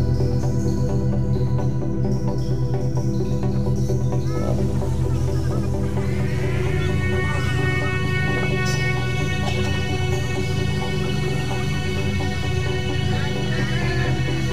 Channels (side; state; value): both; identical; correlation 1.00